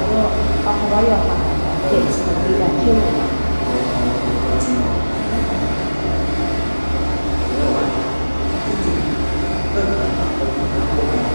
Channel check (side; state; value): both; inverted; correlation -1.00